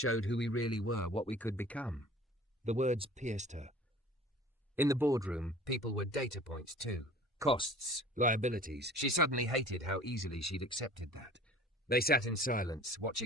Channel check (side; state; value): both; normal; correlation 0.45